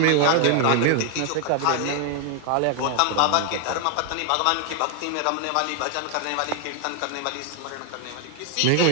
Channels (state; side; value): different; both; correlation 0.00